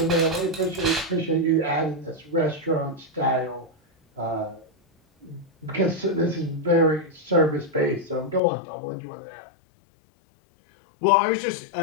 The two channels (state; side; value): drops out; right; at 8.4 s